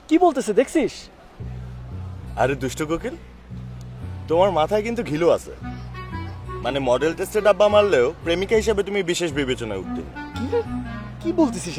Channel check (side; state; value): both; identical; correlation 1.00